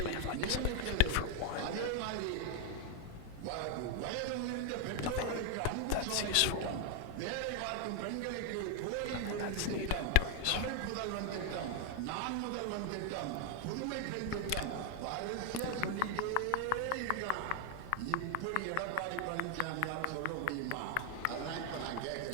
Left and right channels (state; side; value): different; both; correlation 0.00